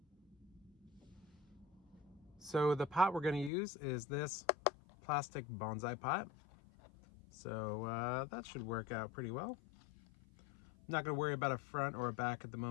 So the pot we're going to use is this plastic bonsai pot. So that should work out pretty well. I'm not going to worry about a front or a back at the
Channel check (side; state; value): right; drops out; at 3.5 s